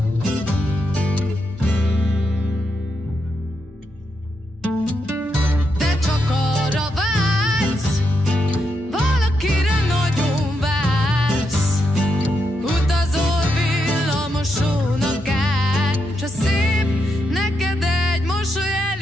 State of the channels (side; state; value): both; normal; correlation 0.82